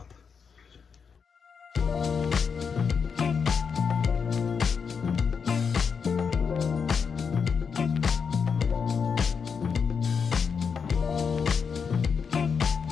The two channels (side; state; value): right; quieter; 6.1 dB